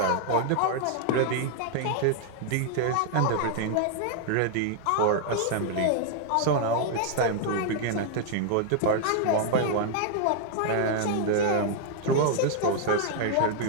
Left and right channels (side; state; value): both; different; correlation 0.00